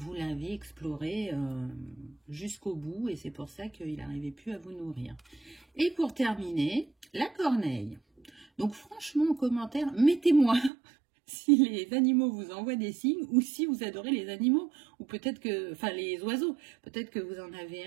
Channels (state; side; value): drops out; left; at 10.7 s